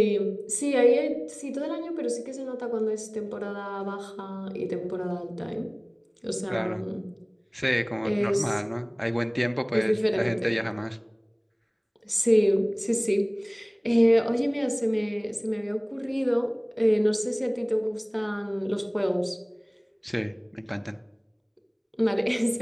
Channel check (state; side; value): identical; both; correlation 1.00